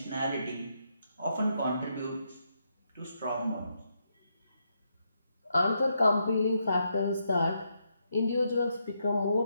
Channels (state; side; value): inverted; both; correlation -0.80